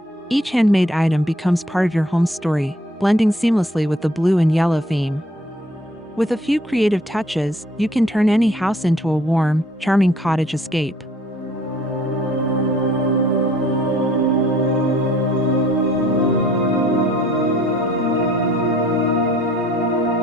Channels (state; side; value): normal; both; correlation 0.58